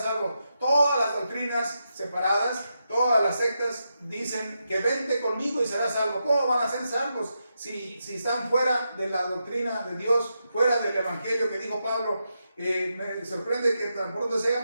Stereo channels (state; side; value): inverted; both; correlation -0.85